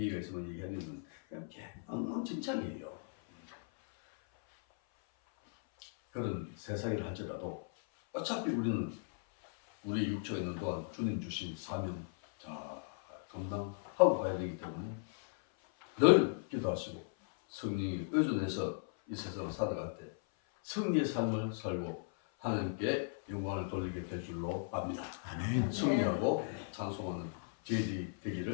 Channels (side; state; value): right; silent; 53 dB below the other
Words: 있으면 얘기하는 그냥 엉망진창이에요. 그런 세상이라 할지라도 어차피 우리는 우리 육체가 있는 동안 주님 주신 사명 잘 감당하고 가야 되기 때문에 늘 기도하시고 성령이 의존해서 이 세상을 살아갈 때 승리의 삶을 살고 하나님께 영광을 돌리게 될 줄로 압니다. 아멘. 승리하고 찬송하는 저희들이